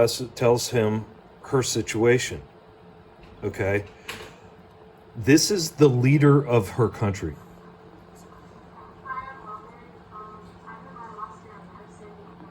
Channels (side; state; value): both; identical; correlation 1.00